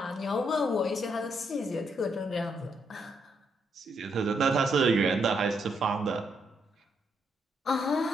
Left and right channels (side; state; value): both; normal; correlation 0.76